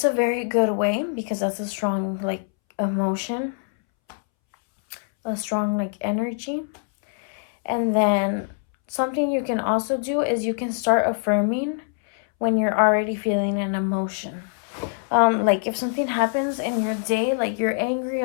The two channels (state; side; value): silent; right; 63 dB below the other